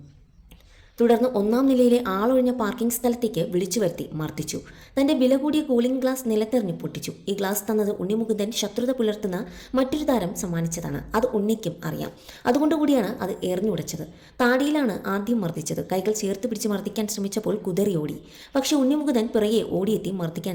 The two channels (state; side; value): identical; both; correlation 1.00